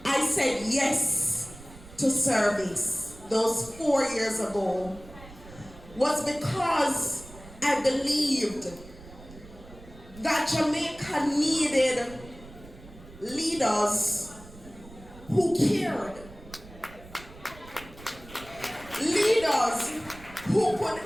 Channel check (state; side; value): noise; right; rumble, 19 dB below the sound